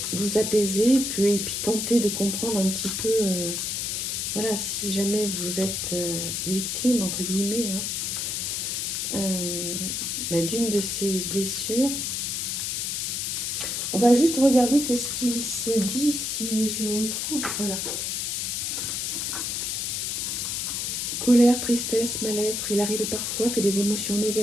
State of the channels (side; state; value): left; noise; hiss, 1 dB below the sound